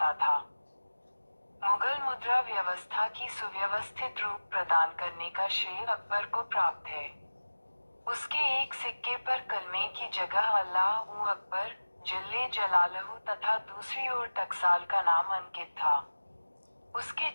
था। मुगल मुद्रा व्यवस्था की सुव्यवस्थित रूप प्रदान करने का श्रेय अकबर को प्राप्त है। उसके एक सिक्के पर कलमे की जगह अल्लाह उ अकबर जल्ले जलालहू तथा दूसरी ओर टकसाल का नाम अंकित था। उसके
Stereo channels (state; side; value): inverted; both; correlation -1.00